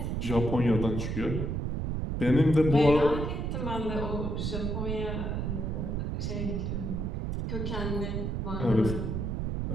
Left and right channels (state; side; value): noise; right; rumble, 1 dB below the sound